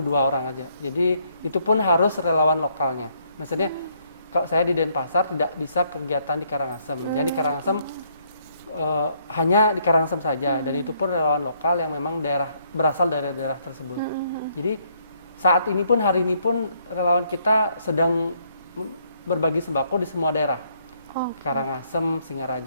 orang aja. Jadi itu pun harus relawan lokalnya. Maksudnya kalau saya di Denpasar tidak bisa kegiatan di Karangasem. Jadi di Karangasem hanya di Karangasem saja, dan itu pun relawan lokal yang memang berasal dari daerah tersebut. Jadi saat ini pun, hari ini pun relawan kita sedang berbagi sembako di semua daerah. Karangasem,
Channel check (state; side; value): inverted; both; correlation -0.71